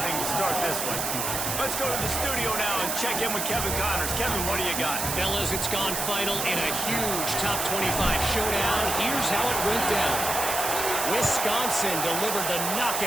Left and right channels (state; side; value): noise; right; hiss, 1 dB below the sound